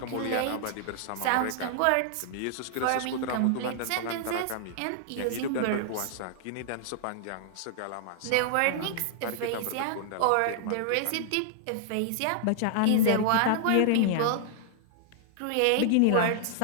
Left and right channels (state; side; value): different; both; correlation -0.01